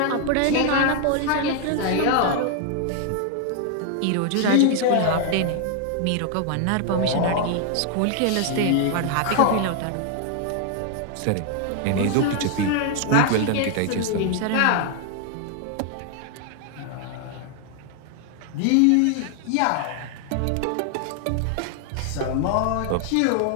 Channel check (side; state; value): both; different; correlation 0.00